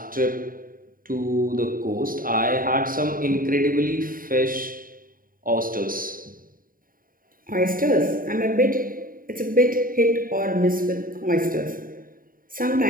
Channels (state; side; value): late; left; 0.41 ms